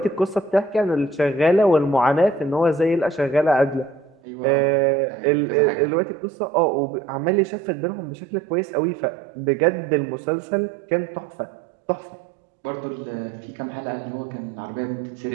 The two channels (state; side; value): drops out; left; at 4.2 s